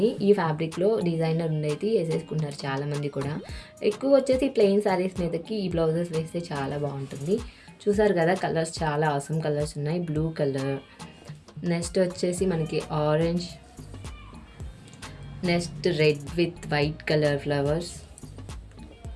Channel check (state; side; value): identical; both; correlation 1.00